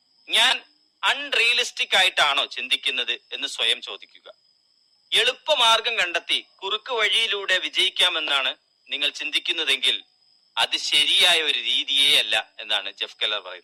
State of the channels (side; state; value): both; identical; correlation 1.00